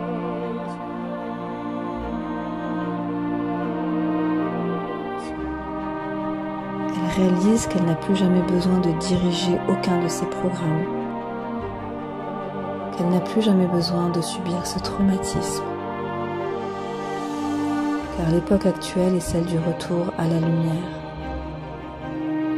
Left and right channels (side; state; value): both; identical; correlation 1.00